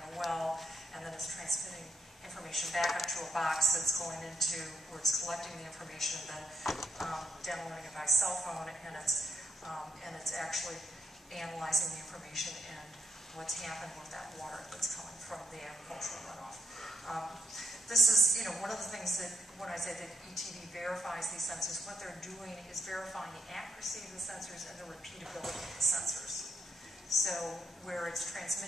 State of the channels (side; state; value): both; normal; correlation 0.76